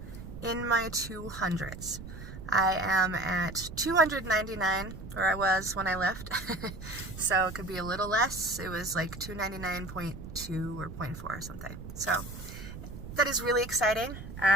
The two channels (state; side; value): noise; right; rumble, 11 dB below the sound